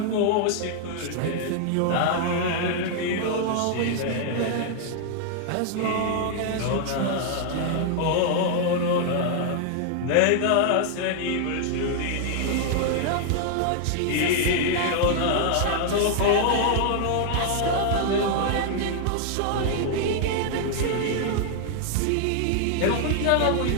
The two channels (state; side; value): different; both; correlation 0.00